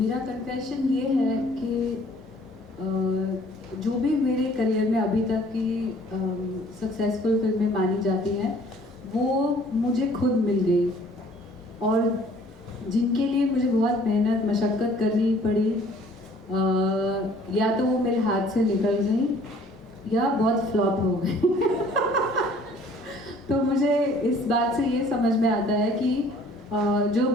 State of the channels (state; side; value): normal; both; correlation 0.56